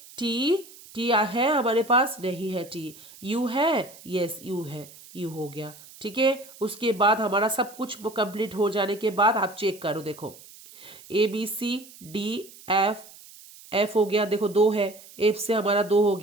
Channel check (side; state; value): right; noise; hiss, 20 dB below the sound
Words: टी, टी है हमारे पास, नहीं है टी। यू है, यस यू है, यू हो गया, ठीक है। उसके बाद हमारा सब कुछ कंप्लीट हो जाने के बाद आप चेक करो, देखो A B C D F, F हो गया, देखो दो है, एफ से हमारा दो हो